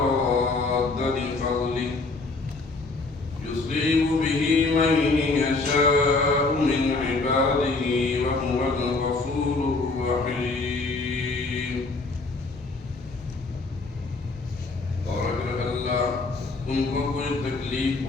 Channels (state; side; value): quieter; right; 3.6 dB